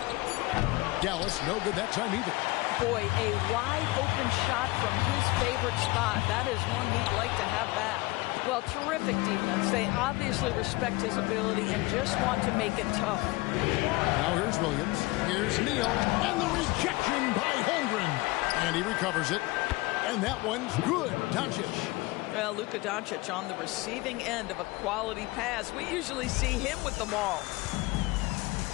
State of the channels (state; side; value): quieter; right; 21.9 dB